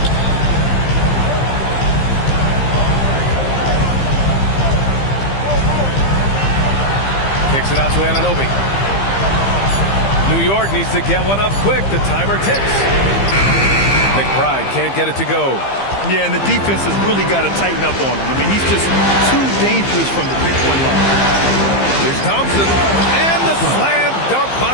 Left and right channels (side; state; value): right; late; 15 ms